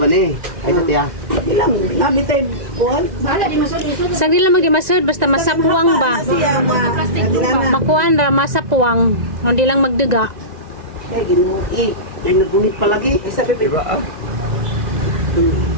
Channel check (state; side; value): late; left; 1.9 ms